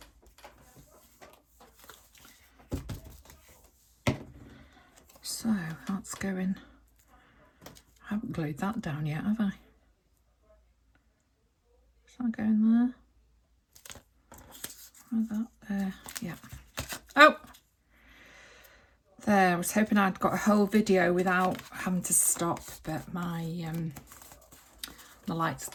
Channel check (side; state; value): both; identical; correlation 1.00